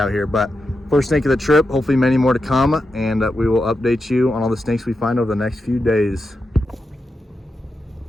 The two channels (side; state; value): both; normal; correlation 0.88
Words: here, but first snake of the trip, hopefully many more to come, and we will update you on all the snakes we find over the next few days.